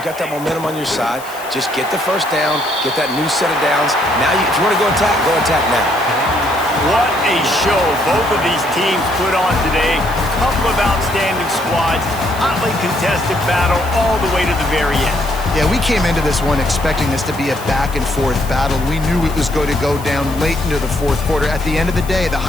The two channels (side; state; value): left; noise; hiss, 17 dB below the sound